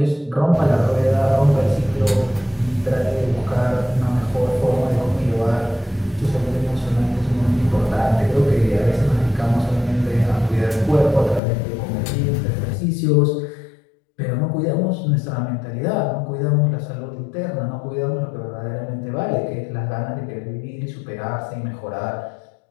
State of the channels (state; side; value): drops out; right; at 11.4 s